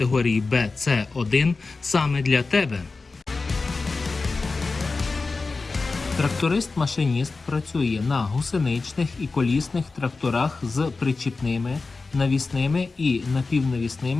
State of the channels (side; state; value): right; quieter; 3.9 dB